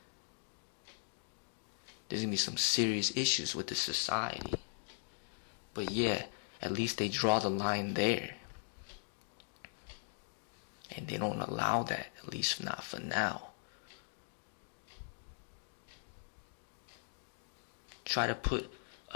there's gonna be some serious issues with the society. But yeah, at least they draw the line there. And they don't allow that, at least not for now. Try to put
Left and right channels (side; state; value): right; silent; digital silence